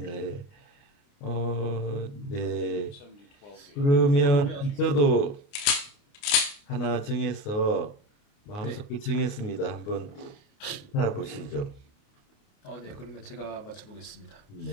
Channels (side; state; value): right; late; 29 ms